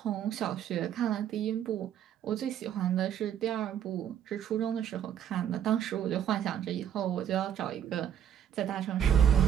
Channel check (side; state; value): left; quieter; 9.6 dB